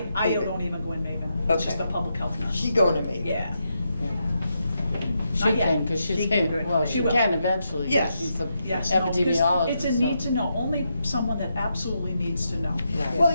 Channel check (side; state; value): both; inverted; correlation -0.83